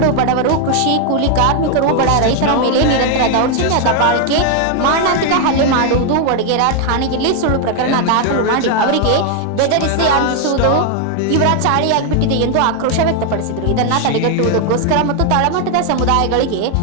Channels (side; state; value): both; different; correlation 0.00